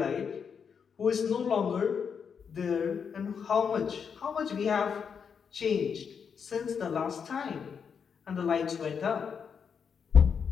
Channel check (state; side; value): quieter; right; 6.6 dB